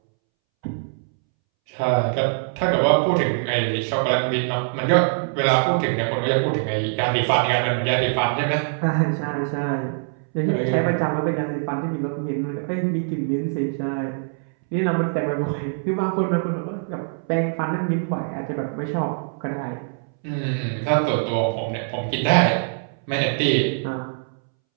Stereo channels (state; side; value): silent; left; 63 dB below the other